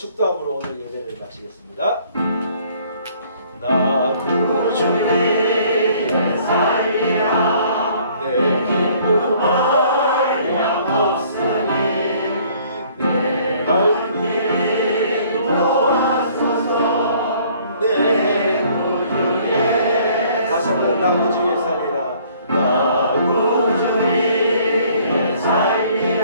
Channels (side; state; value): both; inverted; correlation -0.58